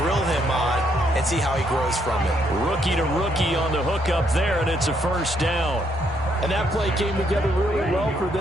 grill him on and see how he grows from it. Rookie to rookie on the hook up there, and it's a first down. And that play came together really well for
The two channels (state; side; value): normal; both; correlation 0.73